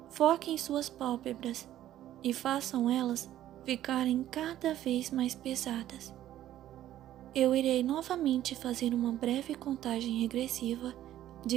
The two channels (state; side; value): quieter; left; 12.7 dB